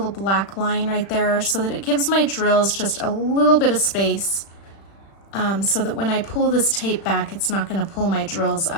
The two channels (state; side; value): late; right; 36 ms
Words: black line right there so that it gives my drills just a little bit of space so that when I pull this tape back, it's not going to pull my drills